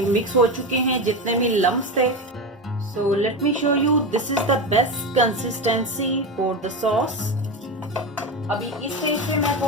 मिक्स हो चुके हैं जितने भी लम्प्स थे। So let me show you, this is the best consistency for the sauce. अभी इस स्टेज पे मैं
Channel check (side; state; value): both; normal; correlation 0.19